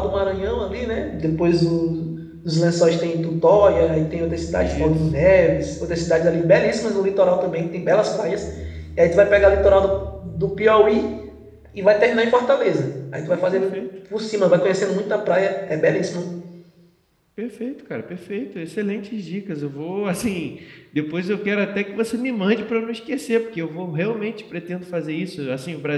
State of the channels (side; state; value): both; identical; correlation 1.00